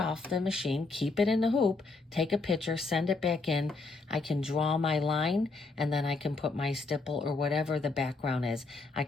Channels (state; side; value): quieter; right; 3.8 dB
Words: the machine, keep it in the hoop, take a picture, send it back in. I can draw my line, and then I can put my stipple or whatever the background is. I